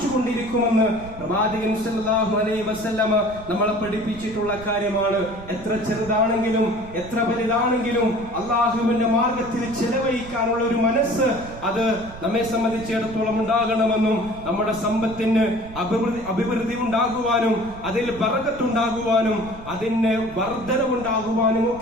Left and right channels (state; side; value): noise; right; rumble, 16 dB below the sound